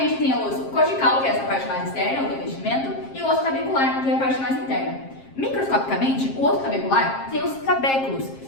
tem o osso cortical, que é essa parte mais externa, o revestimento, e o osso tabecular, que é a parte mais interna. Microscopicamente, o osso tabecular tem os trabéculos,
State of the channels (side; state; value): right; late; 7.5 ms